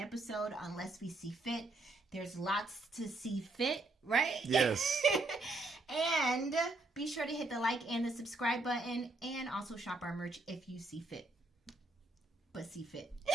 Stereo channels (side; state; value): left; quieter; 3.1 dB